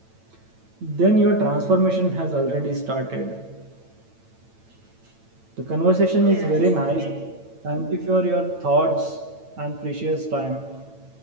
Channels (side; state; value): left; late; 9.0 ms